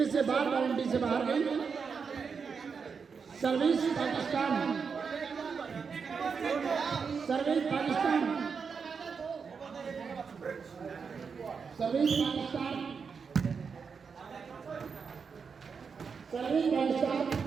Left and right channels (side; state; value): left; quieter; 5.7 dB